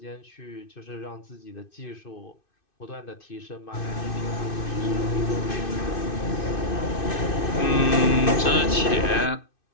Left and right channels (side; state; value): right; late; 2.6 ms